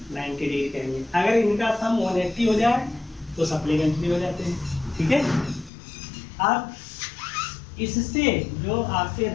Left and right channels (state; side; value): drops out; right; at 5.7 s